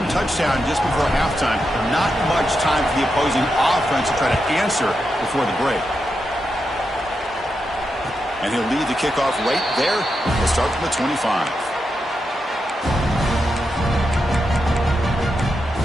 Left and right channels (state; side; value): normal; both; correlation 0.86